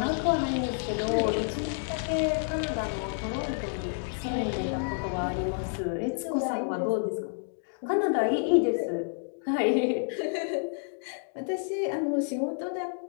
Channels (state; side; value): silent; right; digital silence